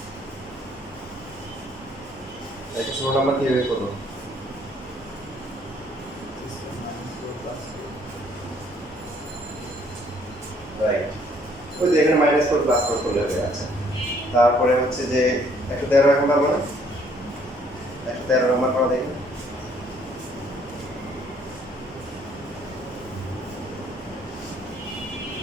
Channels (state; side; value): normal; both; correlation 0.63